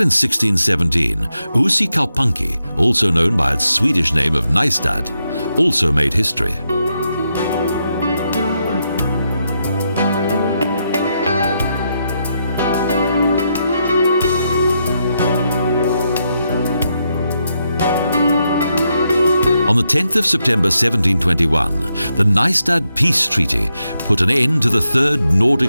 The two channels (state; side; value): inverted; both; correlation -0.82